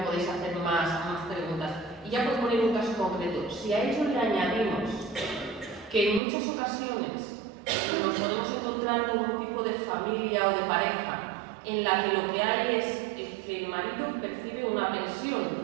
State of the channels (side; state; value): left; drops out; at 6.2 s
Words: podéis hacer más preguntas. Y ya por poner un caso concreto, si a ello le añadimos que en muchas ocasiones nos podemos encontrar con un tipo de familia o de pareja en la que lo que hay es que el marido percibe una